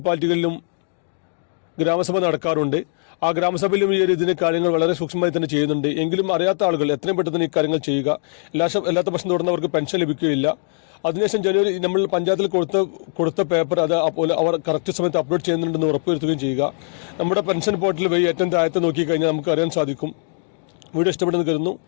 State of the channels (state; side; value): silent; right; digital silence